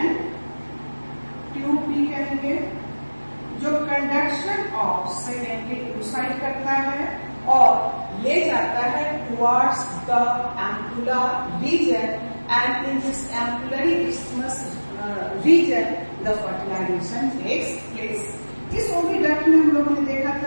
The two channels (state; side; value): inverted; both; correlation -1.00